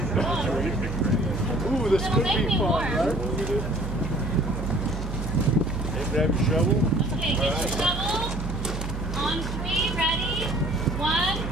Ooh, this It'll could make be me fun, warm. right? Hey, grab your shovel. Okay, get your shovel. On 3, ready? 1,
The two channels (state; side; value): noise; right; hum, 5 dB below the sound